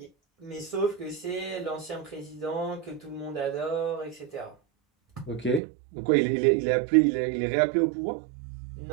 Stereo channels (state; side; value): drops out; left; at 5.6 s